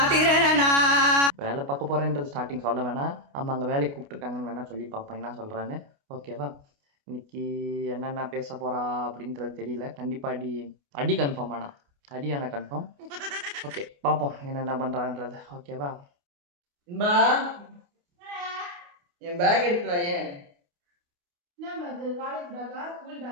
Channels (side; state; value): left; late; 29 ms